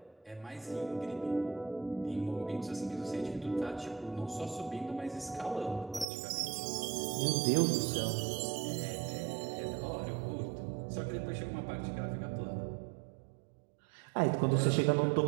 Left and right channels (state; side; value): drops out; left; at 6.1 s